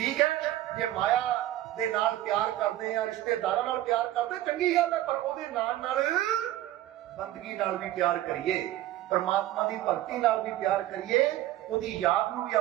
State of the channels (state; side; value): quieter; left; 14.3 dB